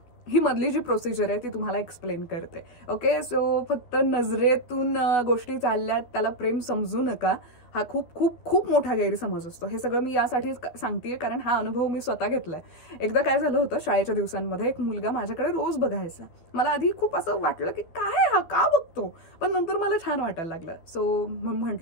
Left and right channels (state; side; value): late; right; 12 ms